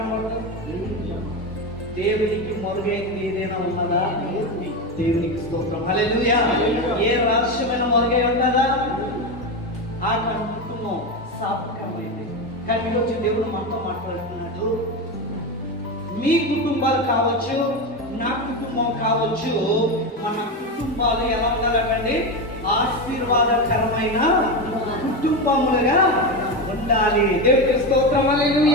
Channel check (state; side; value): normal; both; correlation 0.16